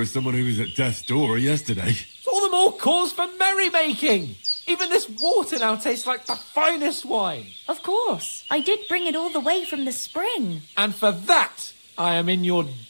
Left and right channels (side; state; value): both; inverted; correlation -1.00